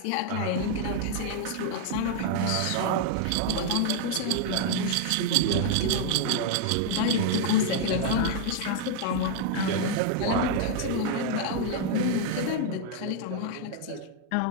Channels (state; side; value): different; both; correlation 0.00